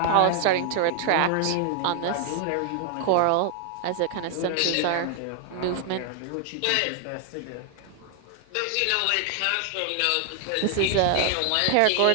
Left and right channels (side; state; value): both; different; correlation 0.00